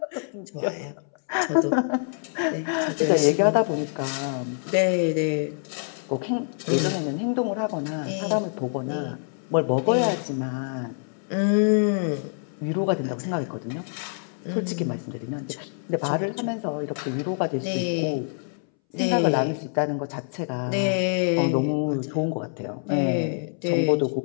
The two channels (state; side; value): silent; right; 61 dB below the other